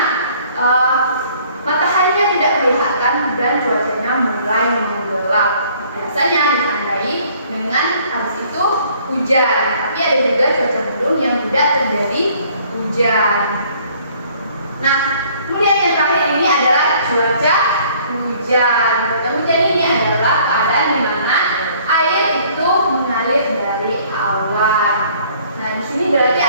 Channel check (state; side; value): inverted; both; correlation -0.58